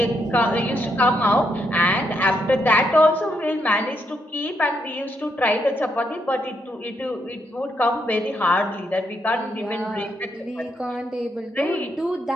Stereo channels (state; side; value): normal; both; correlation 0.78